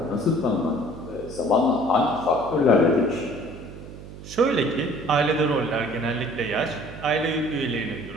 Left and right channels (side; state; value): right; noise; hum, 14 dB below the sound